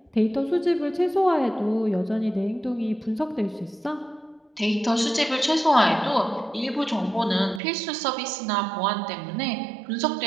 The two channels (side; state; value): left; drops out; at 7.6 s